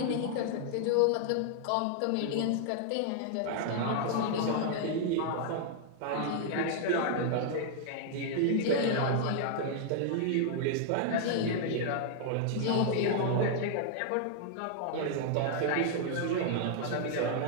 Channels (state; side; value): different; both; correlation 0.00